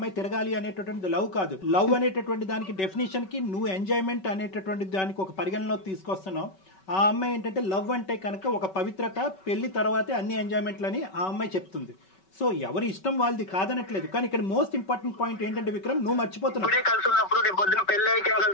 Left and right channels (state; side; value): late; right; 5.3 ms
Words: తిరగాలి అనేటటువంటిది లవ్ కాదు. లవ్ అనేటటువంటి దానికి డెఫినేషన్కి నువ్వు ఎంజాయ్మెంట్ అనేటటువంటి దానికి ఒక పరిగణలో తీసుకొస్తున్నావు. ఆ అమ్మాయి ఏంటంటే లవ్ అంటే కనుక ఒక పవిత్రత, పెళ్లి తర్వాతే అన్ని ఎంజాయ్మెంట్లని ఆ అమ్మాయి చెప్తుంది. సో ఎవరి ఇష్టం వాళ్ళది కాదనట్లేదు. కానీ ఇక్కడ మోస్ట్ ఇంపార్టెంట్ పాయింట్ ఏంటంటే విక్రమ్, నువ్వు మర్చిపోతున్నావు.